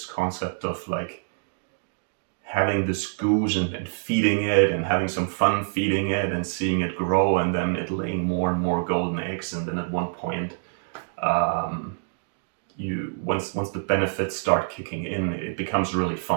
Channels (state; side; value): silent; left; digital silence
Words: concept of like having this goose and feeding it and having some fun feeding it and seeing it grow and then it laying more and more golden eggs, and then at one point, um, you once the benefits start kicking in, it becomes really